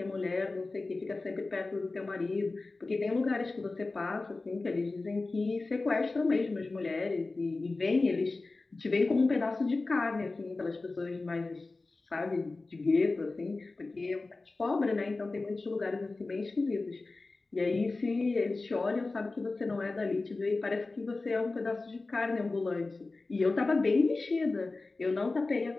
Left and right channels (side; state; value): right; quieter; 3.5 dB